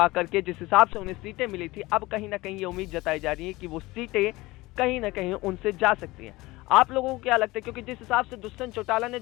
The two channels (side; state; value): right; quieter; 20.4 dB